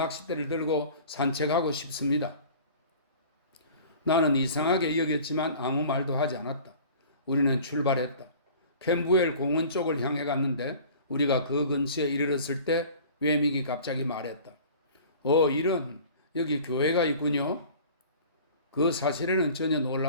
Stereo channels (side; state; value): both; inverted; correlation -0.44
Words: 들고 산책하고 싶습니다. 나는 이상하게 여겼지만 아무 말도 하지 않았다. 우리는 출발했다. 캠부엘 공원 쪽을 향해 갔는데 우리가 그 근처에 이르렀을 때 외믹이 갑자기 말했다. 이런 여기 교회가 있군요. 그 사실에는 전혀